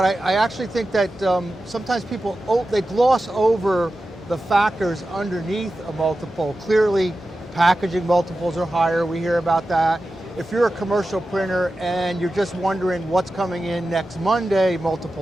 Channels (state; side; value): normal; both; correlation 0.93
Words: I actually think that sometimes people, they gloss over the factors underneath a multiple. Clearly, packaging multiples are higher, we hear about that. If you're a commercial printer and you're just wondering what's coming in next Monday,